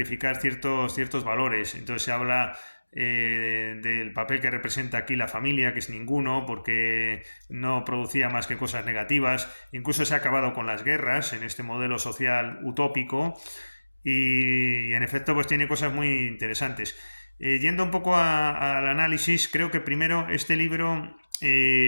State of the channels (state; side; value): inverted; both; correlation -1.00